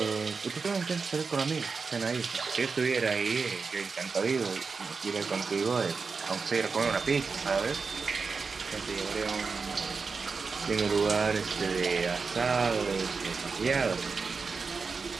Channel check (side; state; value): left; quieter; 4.8 dB